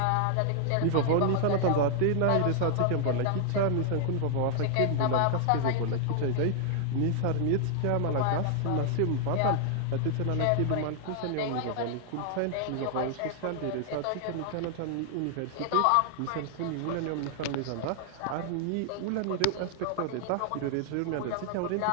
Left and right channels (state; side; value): different; both; correlation 0.00